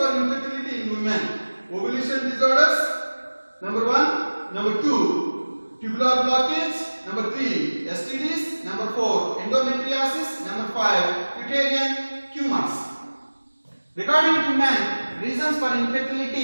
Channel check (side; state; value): both; inverted; correlation -1.00